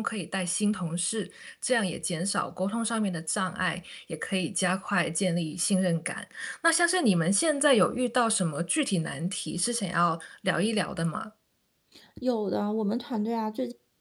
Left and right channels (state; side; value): identical; both; correlation 1.00